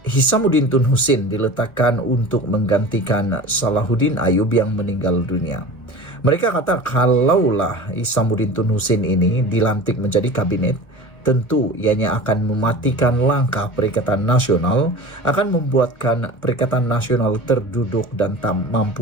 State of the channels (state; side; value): late; right; 1.6 ms